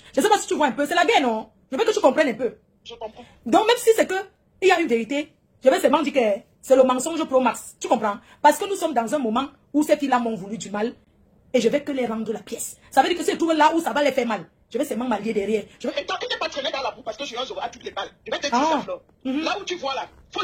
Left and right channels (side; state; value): both; identical; correlation 1.00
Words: Je ne sais pas si tu vois un peu, c'est la guerre, non? Je veux que tu comprennes un peu. Je comprends. Donc, même si c'est que il y a une vérité, je vais seulement dire que c'est le mensonge pro max. Tu comprends? Parce que nous sommes dans un moment où ces filles-là m'ont voulu du mal. et je vais que les rendre la pièce. Ça veut dire que si je trouve là où ça va les faire mal, je vais seulement m'allier derrière. Je vais... Et toi, tu n'es pas traîné dans la boue parce que Julien Zogo a toutes les balles. Je vais te dire ça, Flore. Là où tu vois là, faut